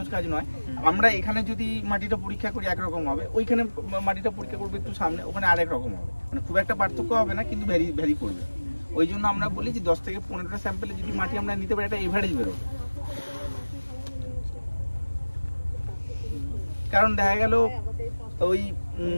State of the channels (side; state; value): both; inverted; correlation -1.00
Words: কাজ নয় আমরা এখানে যদি মাটিটা পরীক্ষা করি একরকম হবে ওইখানে মাটিটা পরীক্ষা করবে একটু সামনে ওখানে আরেক রকম হবে মানে খুব একটা পার্থক্য হবে না কিন্তু ভ্যারি করবে ওই জন্য আমরা বলি যে 10 থেকে 15টা স্যাম্পলে যদি মাটি আমরা নিতে পারি একটা এভারেজ বেরোবে কারণ দেখা গেল ওই